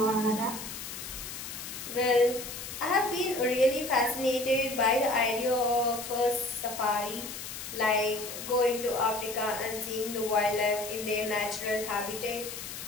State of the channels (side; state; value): left; noise; hiss, 9 dB below the sound